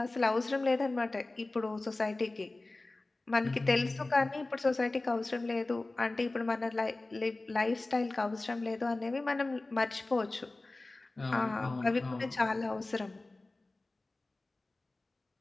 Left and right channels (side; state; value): right; quieter; 3.0 dB